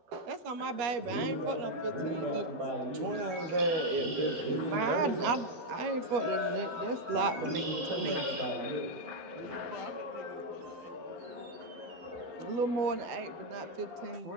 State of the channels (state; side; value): late; left; 12 ms